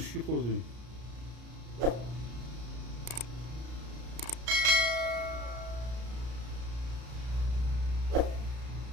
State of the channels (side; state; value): left; late; 33 ms